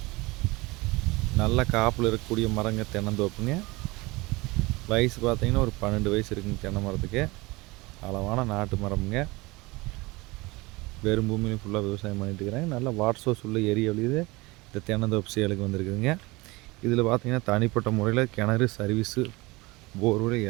நல்ல காப்பில் இருக்கக்கூடிய மரங்க தென்னந்தோப்புங்க. வயசு பார்த்தீங்கன்னா ஒரு 12 வயசு இருக்குங்க தென்னை மரத்துக்கு. அளவான நாட்டு மரம்ங்க. வெறும் பூமியிலும் ஃபுல்லாக விவசாயம் பண்ணிட்டு இருக்கிறாங்க. நல்ல வாட்டர் சோர்ஸ் உள்ள ஏரியாவிலேயே இந்த தென்னந்தோப்பு சேலுக்கு வந்திருக்குதுங்க. இதில் பார்த்தீங்கன்னா தனிப்பட்ட முறையில் கிணறு, சர்வீஸு, போர்வெல்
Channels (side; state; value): left; quieter; 23.0 dB